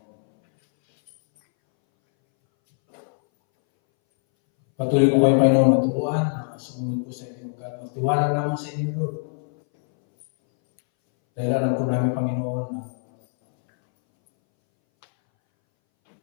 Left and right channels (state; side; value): silent; right; 61 dB below the other